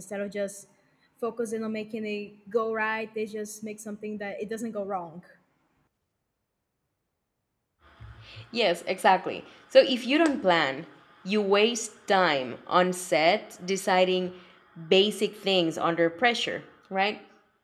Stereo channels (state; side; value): identical; both; correlation 1.00